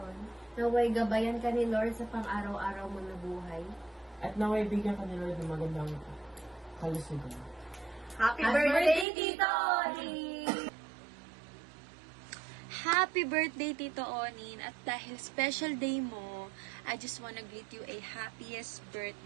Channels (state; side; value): drops out; left; at 9.1 s